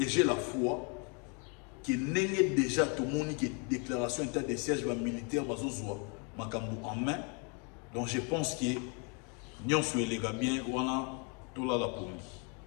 j'ai la foi qui n'est déjà tout le monde qui est déclaration état de siège militaire en main. Donc je pense que nous sommes les gars bien, on a tout là la police.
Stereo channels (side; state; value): right; quieter; 35.3 dB